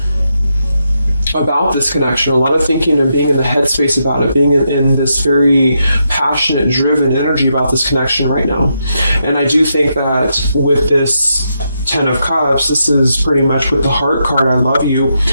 about this connection, a lot of thinking and being in the headspace about it, being in this very passionate, driven energy about this connection right now. And I do think that with this Ten of Cups, this is pretty much with the heart card, I love you.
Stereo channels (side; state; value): both; inverted; correlation -0.82